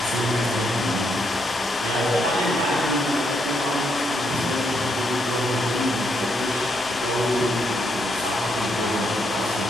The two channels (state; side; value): normal; both; correlation 0.77